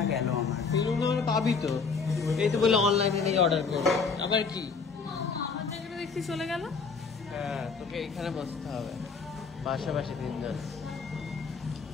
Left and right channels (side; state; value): right; quieter; 5.1 dB